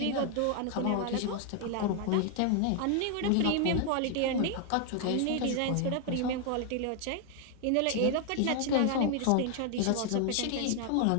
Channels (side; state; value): both; different; correlation 0.00